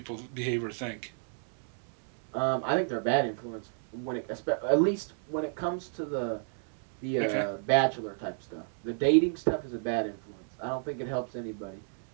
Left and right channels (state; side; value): silent; left; digital silence